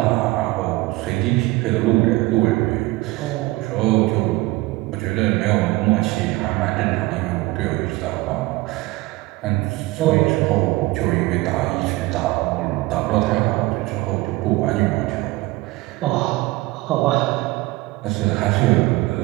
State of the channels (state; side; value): quieter; left; 20.1 dB